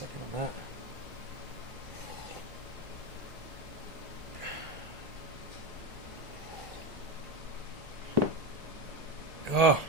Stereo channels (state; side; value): normal; both; correlation 0.16